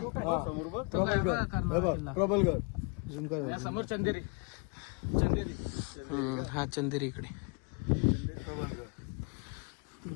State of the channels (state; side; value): quieter; right; 32.4 dB